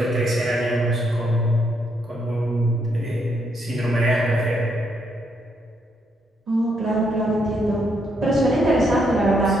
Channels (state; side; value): normal; both; correlation 0.76